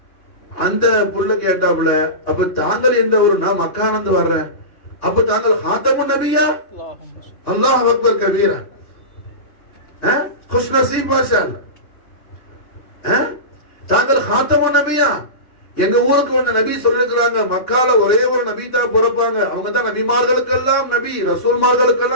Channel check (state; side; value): late; right; 2.8 ms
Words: அந்த புள்ள கேட்டாப்புல அப்ப தாங்கள் எந்த ஊரு? நான் மக்கானந்து வர்றேன். அப்ப தாங்கள் ஹாத்தமுன் நபியா? அல்லாஹ் அக்பர் கபீரா. खुश नसीब माशाअल्लाह. தாங்கள் ஹாத்தமுன் நபியா? எங்க ஊருக்கு வந்த நபி சொல்லிருக்கிறாங்க மக்கால ஒரே ஒரு நபி தான் பிறப்பாங்க, அவங்க தான் நபிமார்களுக்கெல்லாம் நபி,